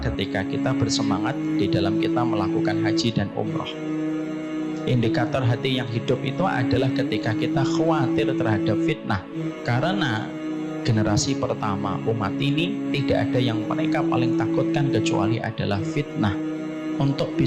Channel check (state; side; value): identical; both; correlation 1.00